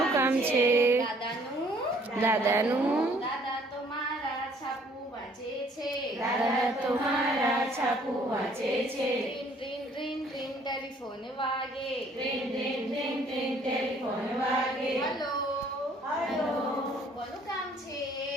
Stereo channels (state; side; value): normal; both; correlation 0.60